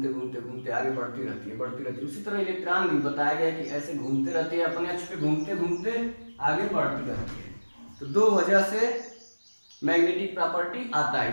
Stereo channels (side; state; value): both; inverted; correlation -1.00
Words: घूमते घूमते आगे बढ़ती रहती है। उसी तरह इलेक्ट्रॉन भी बताया गया कि ऐसे घूमते रहते हैं, अपने अक्ष पे घूमते घूमते आगे बढ़ती रहती है। तो दो वजह से मैग्नेटिक प्रॉपर्टी आता है